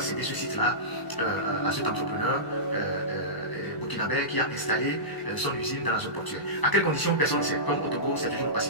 cédé ce site-là à cet entrepreneur burkinabé qui a installé son usine dans la zone portuaire. À quelles conditions, personne ne sait. Comme au Togo, c'est toujours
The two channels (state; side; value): late; right; 1.0 ms